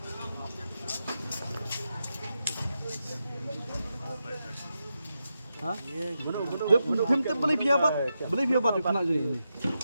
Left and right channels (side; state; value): both; inverted; correlation -0.87